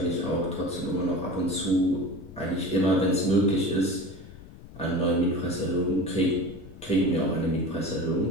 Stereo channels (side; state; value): left; noise; rumble, 17 dB below the sound